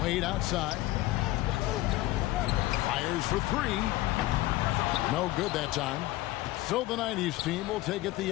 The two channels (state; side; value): quieter; right; 17.5 dB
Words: Wade outside. Fires for three. No good that time. So the 90s team will take it the